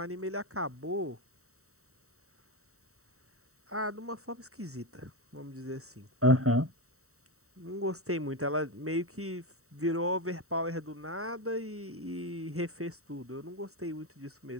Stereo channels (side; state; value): left; late; 0.64 ms